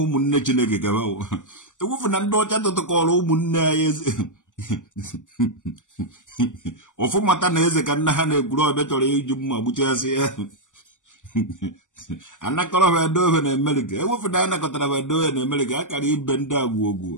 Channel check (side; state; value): right; late; 0.87 ms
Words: munne Chineke ka bawo ewufu na ndo cha to ko munne ayeze ofu mata na eze ka nna ha na egwuru obe choro iju mma gbuchasi ya anakoro be do na America ewufu na anakotara be do na America akara ibe ndị